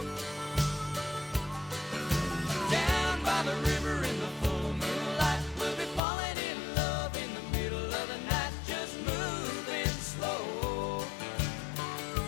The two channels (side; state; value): right; drops out; at 6.0 s